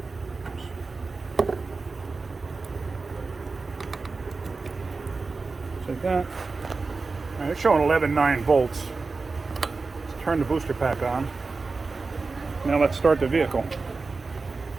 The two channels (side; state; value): left; quieter; 4.0 dB